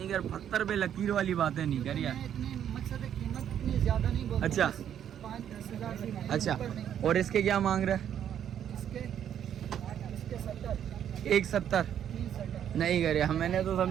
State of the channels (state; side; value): quieter; left; 9.6 dB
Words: कर, पत्थर पे लकीर वाली बातें नहीं कर यार। इतनी मकसद है, कीमत इतनी ज्यादा नहीं बोलते। अच्छा। 5-10 हजार से अच्छा ऊपर नहीं। और इसके क्या मांग रहा है? इसके 70 170 370 नहीं कर यार, मैंने तो